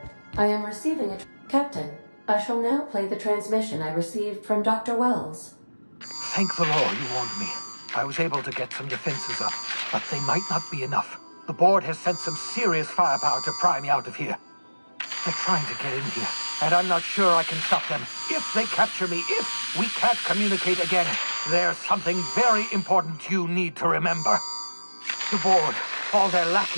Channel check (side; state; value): both; inverted; correlation -1.00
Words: I am receiving a... Captain, I shall now play the transmission I received from Dr. Wells. Thank the Lord you warned me. I was able to get some defenses up, but they might not be enough. The board has sent some serious firepower to pry me out of here. They're trying to get in here, and I'm not sure I can stop them. If they capture me, if we can't communicate again, there's something very important you need to remember. The board, all their